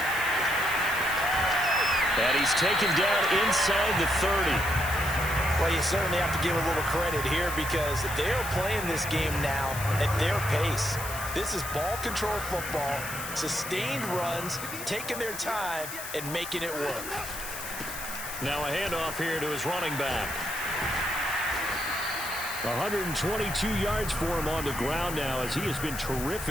And he's taken down inside the 30. Well, you certainly have to give a little credit here because they're playing this game now at their pace. This is ball control football, sustained runs, taking their time, and making it work. Now a handoff here to his running back. 122 yards for him on the ground now as he has been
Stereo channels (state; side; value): noise; left; hiss, 9 dB below the sound